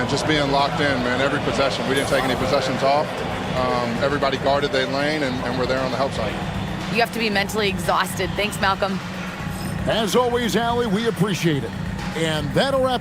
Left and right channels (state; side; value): identical; both; correlation 1.00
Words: just being locked in, man, every possession. We didn't take any possessions off. Everybody guarded their lane, and we're there on the help side. You have to be mentally exhausted. Thanks, Malcolm. As always, Allie, we appreciate it. And that'll